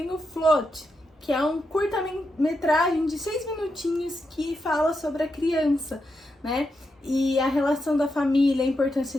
o Float, que é um curta-metragem de 6 minutinhos que fala sobre a criança, né? E a relação da família, a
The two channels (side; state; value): both; normal; correlation 0.85